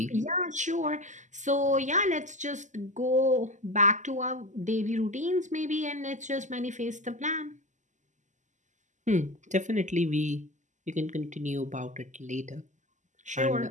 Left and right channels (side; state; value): left; late; 0.35 ms